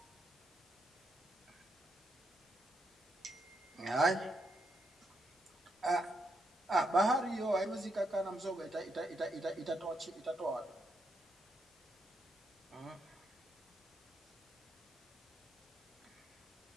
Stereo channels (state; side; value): normal; both; correlation 0.80